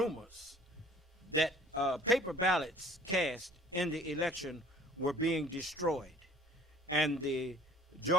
that paper ballots cast in the election were being destroyed, and the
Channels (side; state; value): both; normal; correlation 0.53